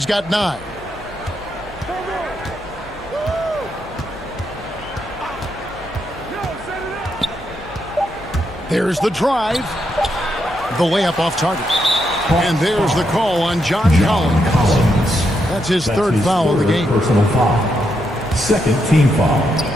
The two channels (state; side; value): noise; left; hum, 21 dB below the sound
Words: got 9. There's the drive. The layup off target. And there's the call on John Collins. That's his third foul of the game. Personal foul. Second team foul.